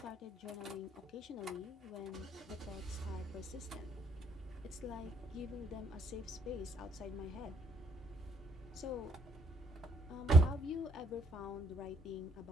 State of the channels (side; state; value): both; normal; correlation 0.66